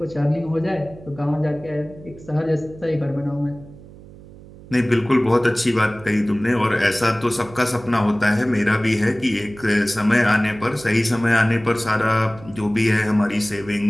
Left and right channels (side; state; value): right; noise; hum, 19 dB below the sound